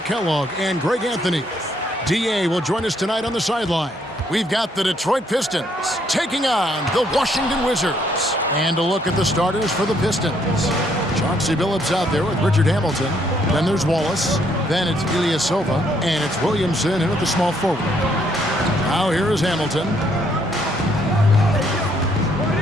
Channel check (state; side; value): normal; both; correlation 0.70